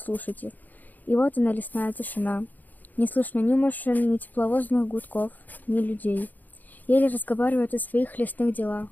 их. И вот она, лесная тишина. Не слышно ни машин, ни тепловозных гудков, ни людей. Еле разговаривают о своих лесных делах.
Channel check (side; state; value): right; late; 0.084 ms